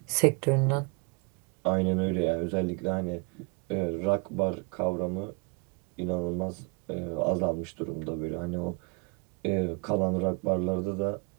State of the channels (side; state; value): left; quieter; 31.2 dB